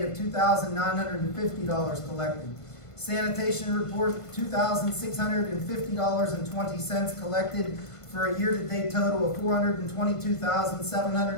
of $2,950 collected. Sanitation report, $2,650.20 collected for a year-to-date total of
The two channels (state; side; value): late; right; 1.5 ms